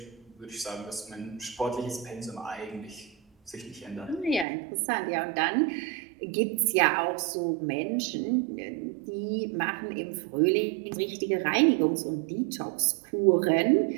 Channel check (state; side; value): drops out; left; at 4.5 s